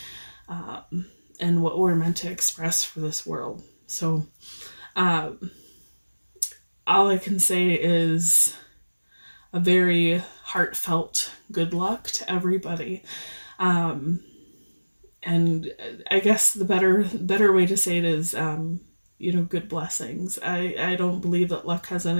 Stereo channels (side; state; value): both; inverted; correlation -1.00